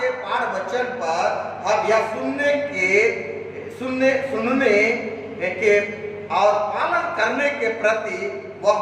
के पाठ वचन पर हम यह सुनने के और पालन करने के प्रति वह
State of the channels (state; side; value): identical; both; correlation 1.00